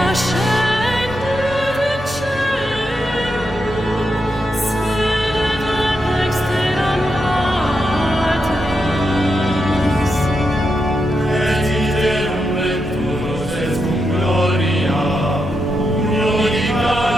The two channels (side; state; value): both; normal; correlation 0.85